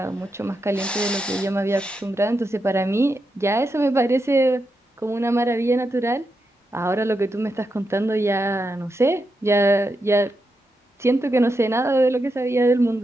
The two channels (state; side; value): normal; both; correlation 0.86